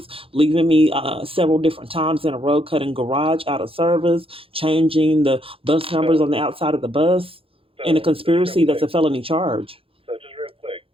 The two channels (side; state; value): left; late; 0.27 ms